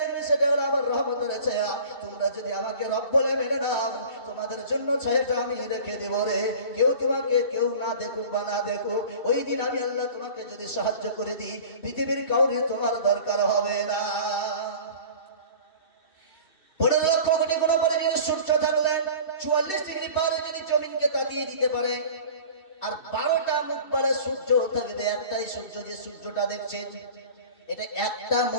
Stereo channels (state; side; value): late; right; 2.6 ms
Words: সেটা হলো আমার রহমতের ছায়া। তোমরা যদি আমাকে রব বলে মেনে নাও, তোমাদের জন্য ছায়াটা আমি রেখে দেব রে, কেউ তোমাকে কেউ না দেখুক বা না দেখুক, ওই দিন আমি আল্লাহ তোমাকে যদি সাহায্য করে দিই, পৃথিবীর কাউরে তোমার দরকার হবে না। 15 লক্ষ কোটি গুণ পরে যদি সূর্য থাকলে 44 ডিগ্রি পারে যদি জমিনকে তাতিয়ে দিতে পারে, আর 12টা মুখ বাড়া সূর্য থাকবে, একটাই সূর্য, যে সূর্যটা দেখছেন এটা একটা